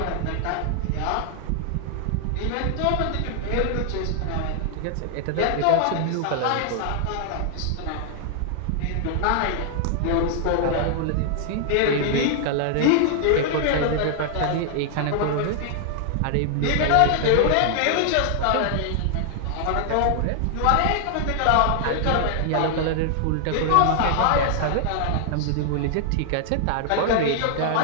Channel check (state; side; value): different; both; correlation -0.01